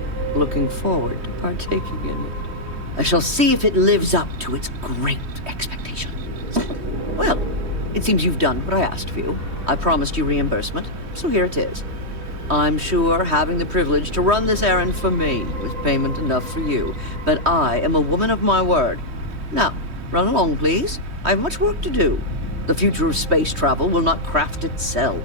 looking forward to partaking in it. I shall see if it lives up to its great expectations. Well, it seems you've done what I asked of you. I promised you reimbursement, so here it is. I'm sure having the privilege to run this errand for me was payment enough for you, but I am a woman of my word. Now, run along, please. I have much work to do. The future of space travel will not craft itself.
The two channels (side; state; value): left; late; 3.2 ms